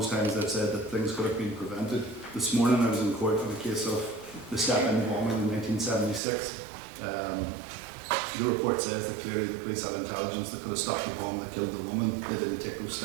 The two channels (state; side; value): drops out; left; at 6.2 s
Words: times they've said that things could have been prevented. This morning I was in court on a case of the Step-In bombing in 1976. The report says that clearly the police had intelligence that could have stopped the bomb that killed the woman. They didn't take those